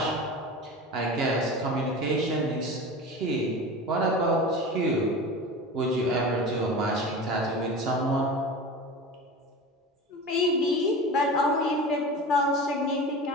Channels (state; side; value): normal; both; correlation 0.32